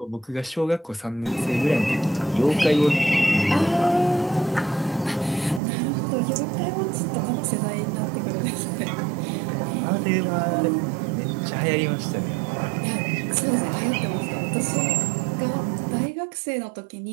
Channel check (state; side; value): drops out; left; at 5.6 s